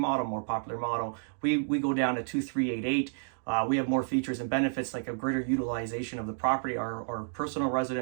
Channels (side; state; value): left; silent; 58 dB below the other